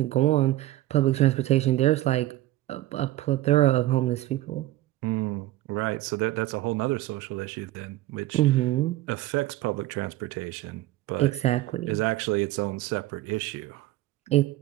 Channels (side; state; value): left; quieter; 16.0 dB